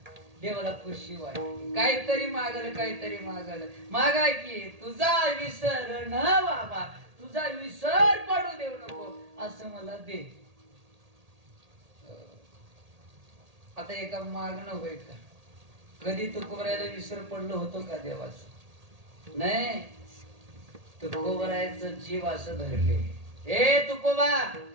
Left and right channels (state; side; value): late; left; 1.8 ms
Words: देवाला खुशी वाटली. काहीतरी मागल मागा की तुझा विसर न बाबा, तुझा विसर पडू देऊ नको असं मला दे. आता एका मागणं होईल का? कधी तुकोबरायला विसर पडलं होतो का देवाचं? नाही. तुकोबरायचं जीव असं धरले. ए तुकोबा,